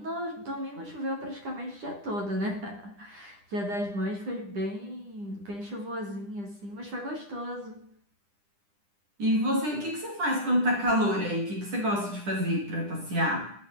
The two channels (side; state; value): left; late; 10 ms